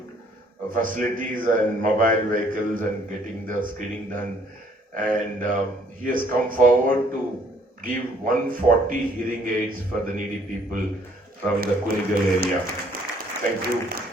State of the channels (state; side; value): normal; both; correlation 0.62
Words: facilities and mobile vehicles and getting the screening done. And he has come forward to give 140 hearing aids for the needy people from the Kunigal area. Thank you,